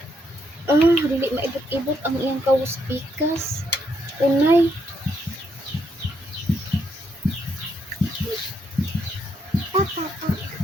Dili maibot-ibot ang iyang kawo sa pikas. Unay.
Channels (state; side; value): normal; both; correlation 0.76